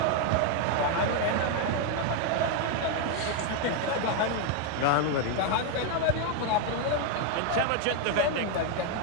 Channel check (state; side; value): different; both; correlation 0.01